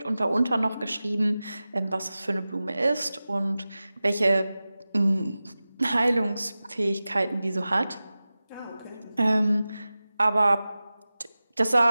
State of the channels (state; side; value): inverted; both; correlation -0.96